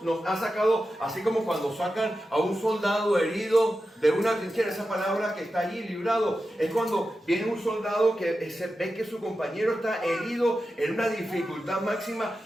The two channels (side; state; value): both; normal; correlation 0.91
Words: nos ha sacado, así como cuando sacan a un soldado herido de una trinchera, esa palabra que está allí, librado, es cuando viene un soldado que se ve que su compañero está herido en una dificultad máxima